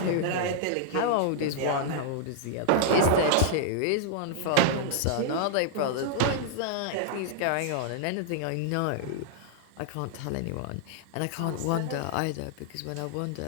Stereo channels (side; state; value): both; different; correlation -0.01